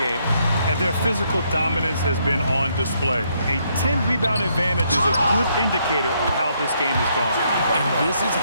game. And their physical dominance has been on display. A 10-rebound advantage is a good indicator of how this game has gone. And this is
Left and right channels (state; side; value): inverted; both; correlation -0.73